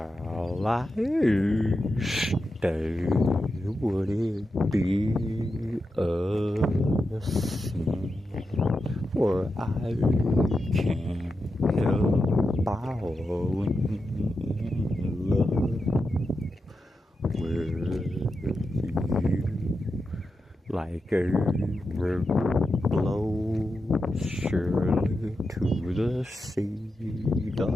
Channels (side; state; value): both; normal; correlation 0.89